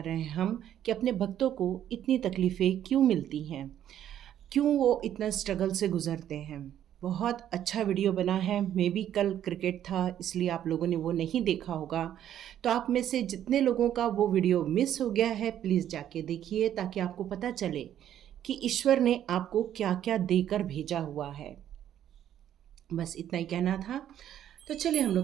रहे हैं हम कि अपने भक्तों को इतनी तकलीफ़ें क्यों मिलती हैं, क्यों वो इतना स्ट्रगल से गुजरते हैं। बहुत अच्छा वीडियो बना है। मे बी कल क्रिकेट था इसलिए आप लोगों ने वो नहीं देखा होगा। तो आप में से जितने लोगों का वो वीडियो मिस हो गया है, प्लीज़ जाके देखिए ताकि आपको पता चले कि ईश्वर ने आपको क्या क्या देकर भेजा हुआ है। बस इतना ही कहना था। तो चलिए हम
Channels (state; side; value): quieter; left; 10.8 dB